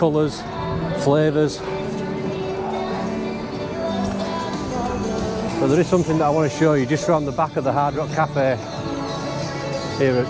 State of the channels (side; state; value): both; identical; correlation 1.00